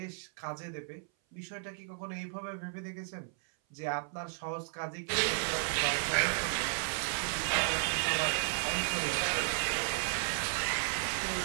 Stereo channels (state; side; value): silent; left; 55 dB below the other